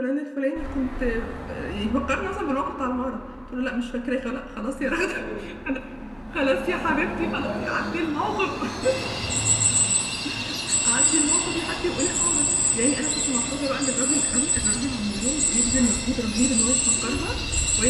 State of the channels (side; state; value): both; identical; correlation 1.00